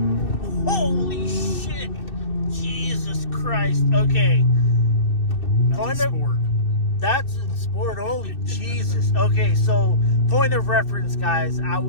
Holy shit! Jesus Christ! Okay. That's a Sport. That's in sport only. Jesus. Okay, so point of reference, guys. I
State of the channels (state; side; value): late; right; 2.6 ms